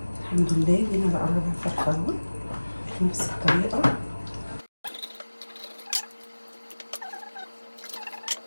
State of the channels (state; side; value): inverted; both; correlation -1.00